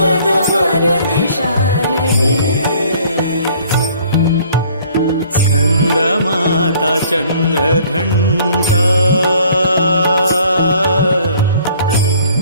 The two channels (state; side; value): inverted; both; correlation -0.57